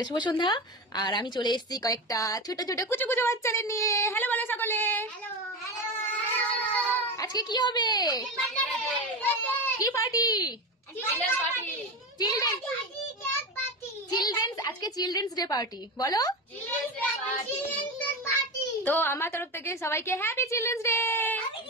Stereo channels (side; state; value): both; normal; correlation 0.21